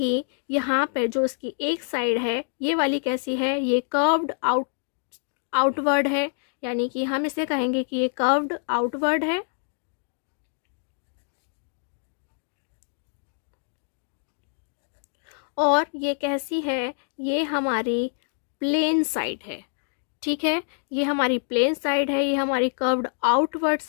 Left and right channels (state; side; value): silent; right; digital silence